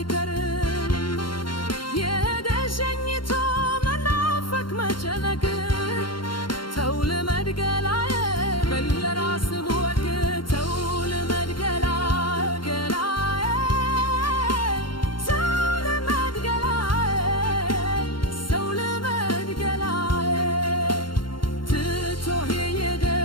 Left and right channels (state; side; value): late; right; 0.72 ms